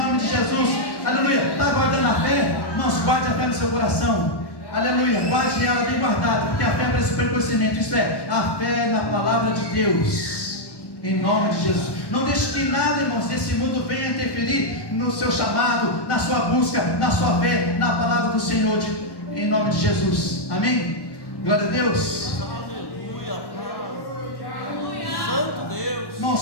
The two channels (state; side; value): late; right; 1.1 ms